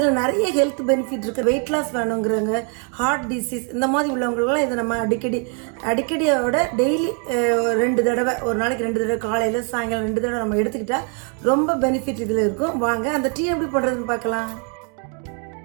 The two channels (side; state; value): left; quieter; 39.1 dB